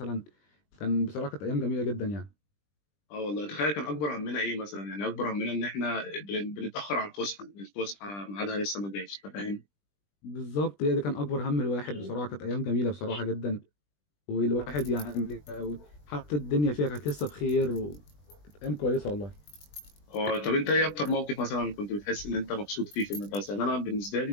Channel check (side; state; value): right; late; 20 ms